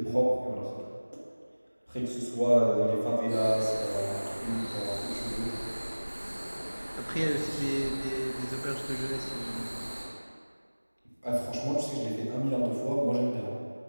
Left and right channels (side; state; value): both; inverted; correlation -1.00